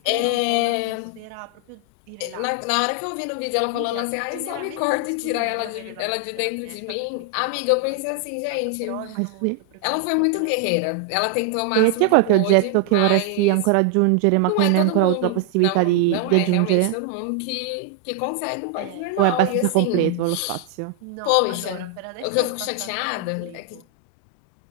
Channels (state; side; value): different; both; correlation 0.00